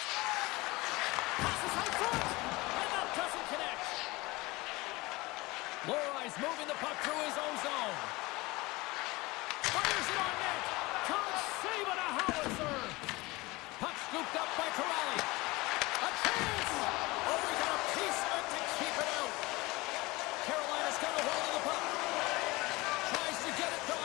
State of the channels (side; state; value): right; quieter; 22.2 dB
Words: Passes high front. And that doesn't connect. Lorai's moving the puck through his own zone. Fires it on net. Can't save it, a howitzer. Puck scooped up by Corrali. A chance. Oh, we got a piece of it to keep it out. Carolina's got a hold of the puck. Tries to get it to